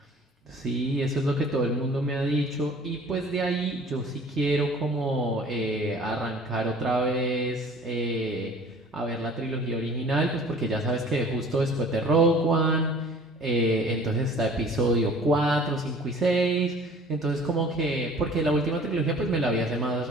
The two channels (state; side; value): normal; both; correlation 0.49